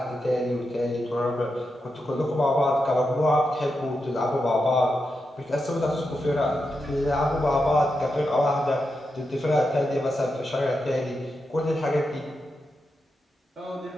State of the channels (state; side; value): normal; both; correlation 0.87